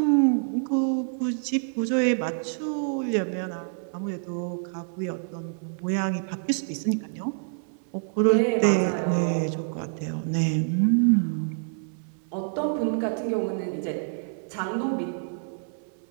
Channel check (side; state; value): left; silent; 60 dB below the other